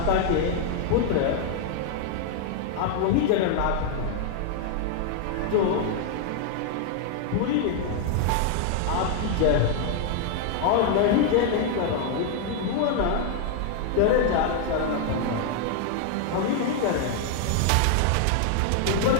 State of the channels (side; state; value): both; different; correlation 0.00